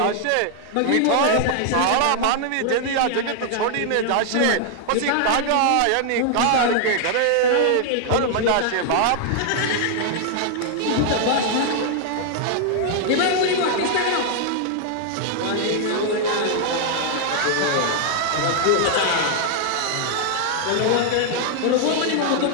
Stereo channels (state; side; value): different; both; correlation 0.00